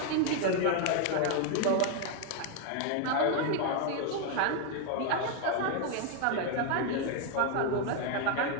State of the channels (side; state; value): both; different; correlation 0.01